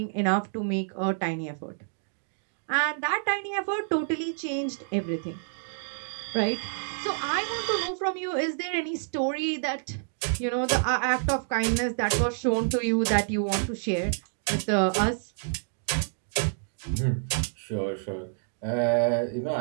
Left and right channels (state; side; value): silent; left; digital silence